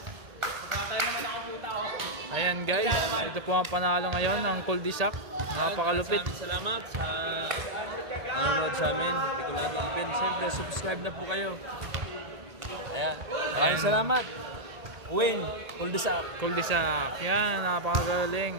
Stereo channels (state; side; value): late; left; 1.8 ms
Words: Ayan guys, ito po ang panalo ngayon ng Kuldisak. Napakalupit. Maraming salamat sa nanonood sa amin. Hindi ko natin open. Siyempre, subscribe na po kayo. Ayan. Maraming salamat. Win. Kuldisak. Kuldisak. Yan,